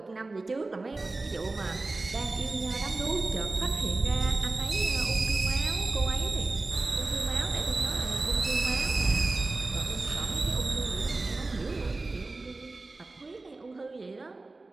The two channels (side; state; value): left; quieter; 3.3 dB